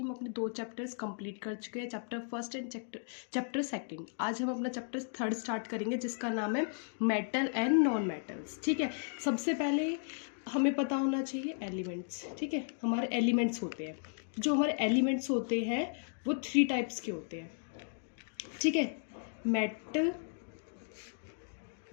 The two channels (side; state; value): right; silent; digital silence